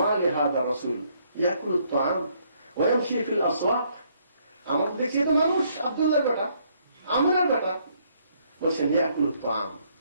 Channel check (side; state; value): both; inverted; correlation -0.68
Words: লিহাদা রাসূল ইয়াকুলুত তাআম ওয়া ইয়ামশি ফিল আসওয়াক, আমরা তো দেখছি তো মানুষ, আব্দুল্লাহর বেটা, আমিনার বেটা। বলছেন ইয়াকুলুত তাআম,